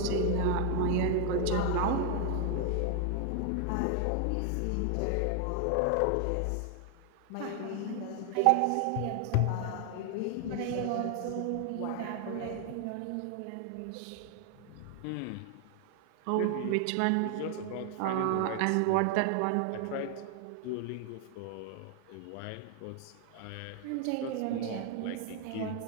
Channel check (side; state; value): both; different; correlation 0.00